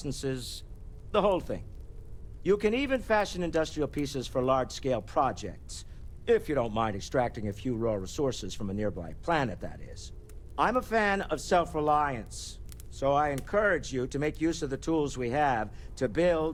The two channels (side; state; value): both; identical; correlation 1.00